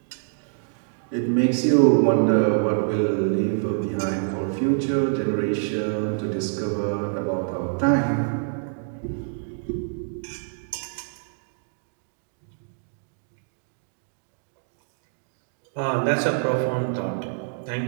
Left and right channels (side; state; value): left; silent; digital silence